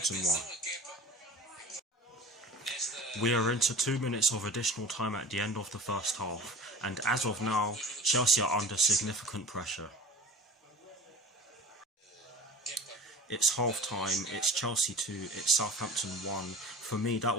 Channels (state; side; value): normal; both; correlation 0.38